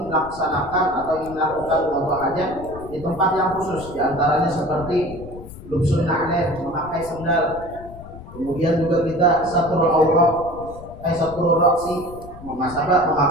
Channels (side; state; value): left; noise; rumble, 16 dB below the sound